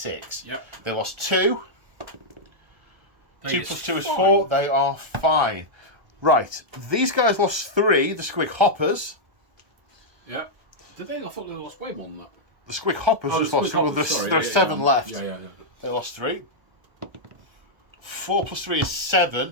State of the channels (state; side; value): late; left; 1.3 ms